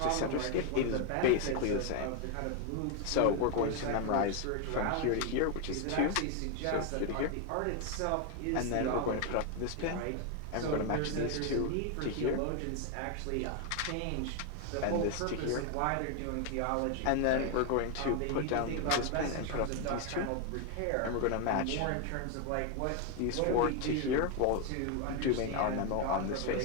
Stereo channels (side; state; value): both; different; correlation 0.01